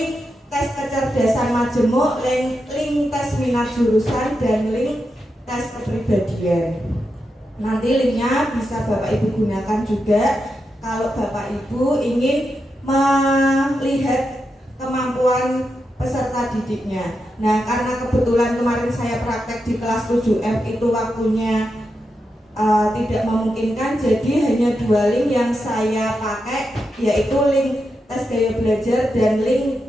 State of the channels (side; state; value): both; normal; correlation 0.87